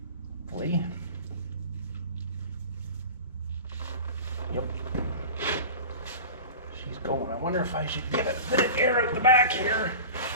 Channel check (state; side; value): inverted; both; correlation -0.34